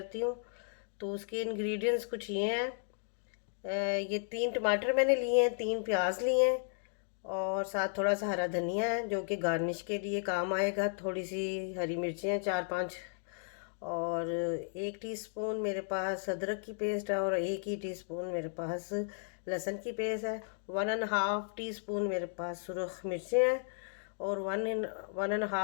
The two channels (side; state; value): right; silent; digital silence